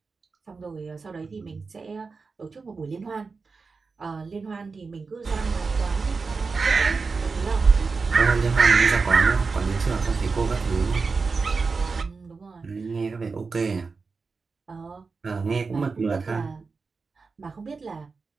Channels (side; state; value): left; quieter; 4.5 dB